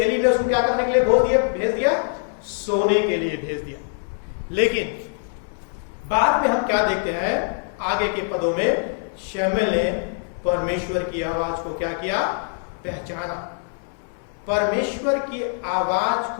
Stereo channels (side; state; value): right; silent; digital silence